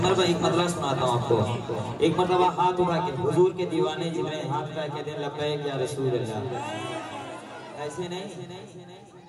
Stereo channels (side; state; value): both; identical; correlation 1.00